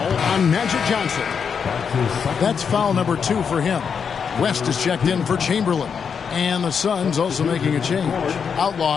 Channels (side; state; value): right; quieter; 6.6 dB